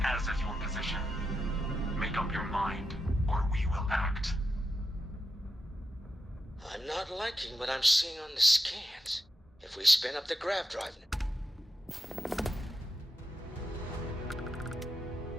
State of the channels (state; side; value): normal; both; correlation 0.87